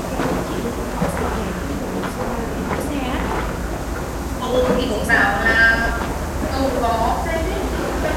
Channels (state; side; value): identical; both; correlation 1.00